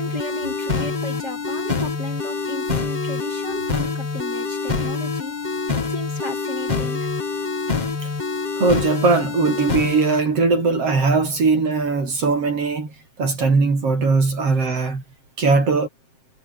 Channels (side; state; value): left; late; 7.5 ms